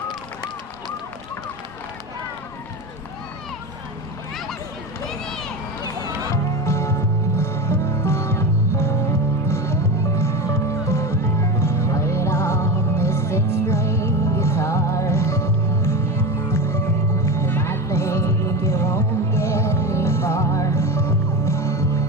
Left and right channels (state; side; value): normal; both; correlation 0.24